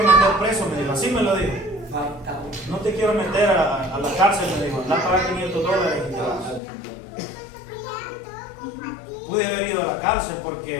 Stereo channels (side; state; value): right; drops out; at 6.6 s